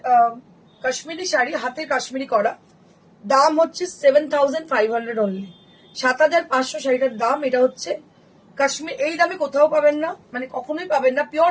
কাশ্মীরি শাড়ি, হাতে কাশ্মীরি করা, দাম হচ্ছে 7500 অনলি, 7500 শাড়িটার দাম। এটা হচ্ছে কাশ্মীর, এই দামে কোথাও পাবেন না, মানে কখনোই পাবেন না, পিওর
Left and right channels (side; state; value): both; identical; correlation 1.00